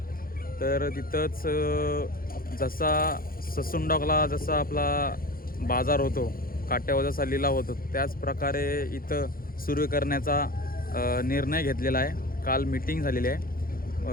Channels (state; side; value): late; right; 0.42 ms